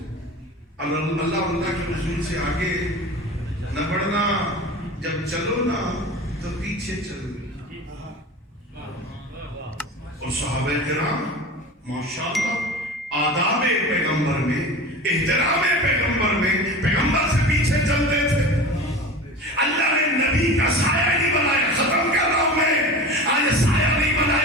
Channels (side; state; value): both; normal; correlation 0.33